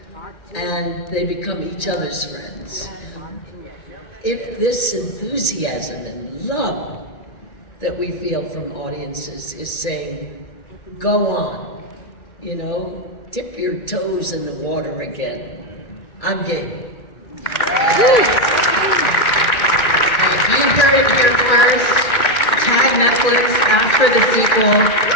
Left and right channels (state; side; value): late; right; 1.8 ms